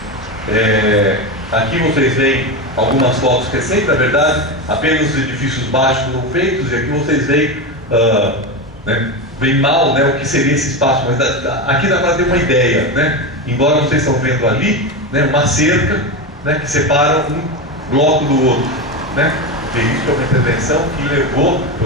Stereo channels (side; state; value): both; normal; correlation 0.17